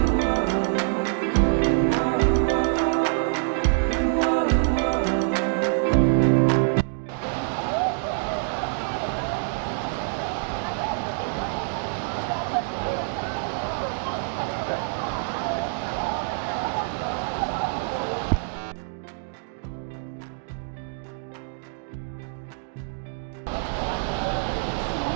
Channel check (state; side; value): silent; left; digital silence